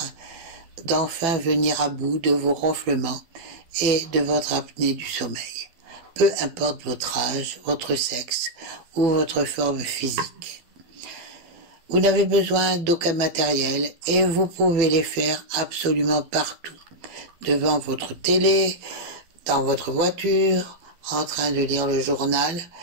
d'enfin venir à bout de vos ronflements et de votre apnée du sommeil, peu importe votre âge, votre sexe ou votre forme physique. Vous n'avez besoin d'aucun matériel et vous pouvez les faire absolument partout, devant votre télé, dans votre voiture, en train de lire le journal.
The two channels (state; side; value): late; left; 12 ms